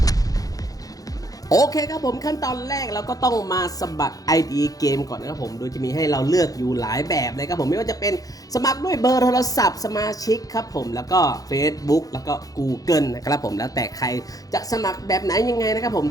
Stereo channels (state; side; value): late; right; 0.17 ms